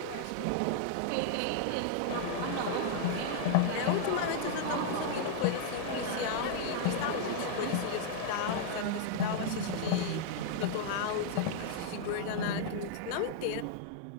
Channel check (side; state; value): both; different; correlation -0.01